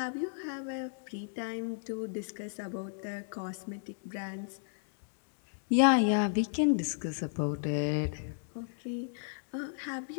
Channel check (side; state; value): right; silent; digital silence